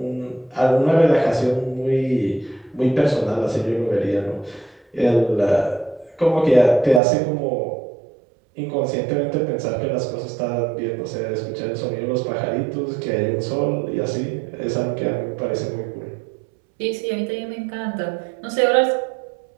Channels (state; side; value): drops out; left; at 7.0 s